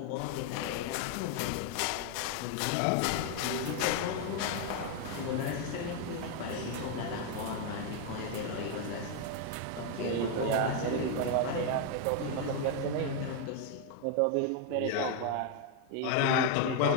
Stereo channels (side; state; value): both; different; correlation 0.00